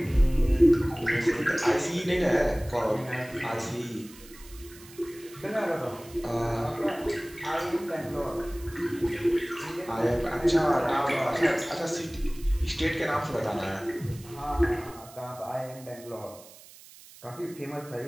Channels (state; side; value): noise; right; hiss, 20 dB below the sound